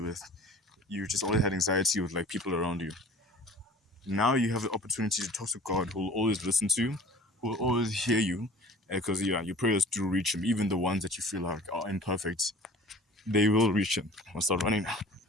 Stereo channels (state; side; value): normal; both; correlation 0.46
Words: you just always had anxiety with like people around you. Now you have the opportunity to talk to God, who will always listen to you, who will always hear you, because your prayers do reach him, even the ones that you feel like are imperfect. They will reach him. I'll start running now.